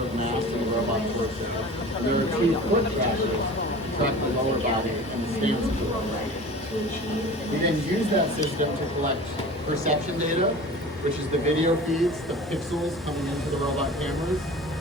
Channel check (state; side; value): normal; both; correlation 0.38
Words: mass in the robot's person. And there are 2 foot trackers track the lower body and the stance of the robot. We then use that system to collect perception data, which is the video feeds, the pixels coming into the robot cameras.